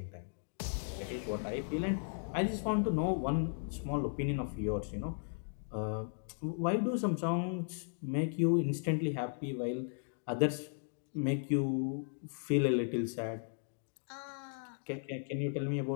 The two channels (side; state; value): right; silent; digital silence